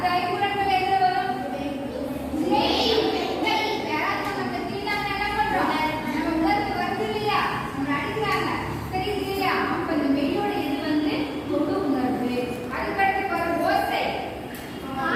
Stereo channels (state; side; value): identical; both; correlation 1.00